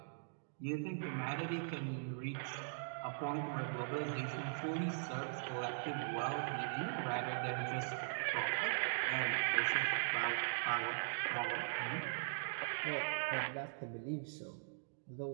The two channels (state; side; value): silent; left; digital silence